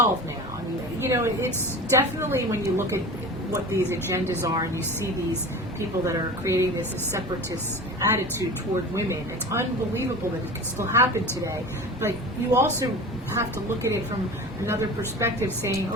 now. I mean, you know, it's definitely when you look at what these agendas are and you see these people that are creating this separatist attitude toward women, it's unbelievable that it can still happen today. But you also have to look at it from another perspective, saying,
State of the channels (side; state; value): both; normal; correlation 0.34